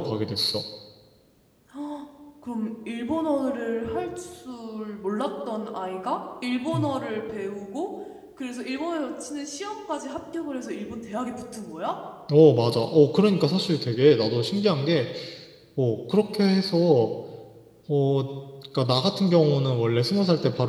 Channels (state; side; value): identical; both; correlation 1.00